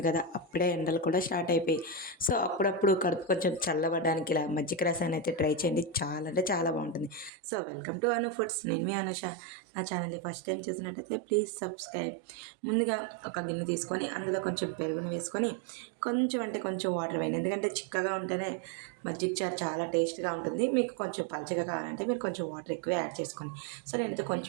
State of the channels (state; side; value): drops out; left; at 7.3 s